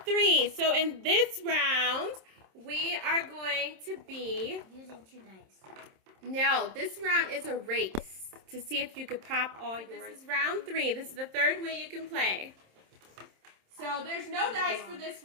3. So in this round, we are going to be... Using 2 dice. No, this round is a race to see if you could pop all yours. This is round 3. This is the 3rd way you can play. So there's no dice for this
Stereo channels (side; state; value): left; late; 27 ms